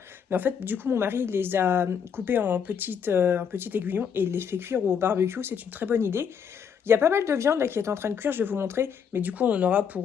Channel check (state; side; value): quieter; right; 7.3 dB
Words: Mais en fait, du coup, mon mari les a coupés en petites aiguillons et il les fait cuire au barbecue. C'est une très bonne idée. Il y a pas mal de viande là qui est en train de cuire, je vais vous montrer. Mais du coup, on en aura